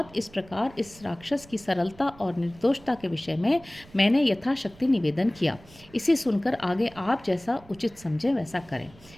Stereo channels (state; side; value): noise; right; rumble, 23 dB below the sound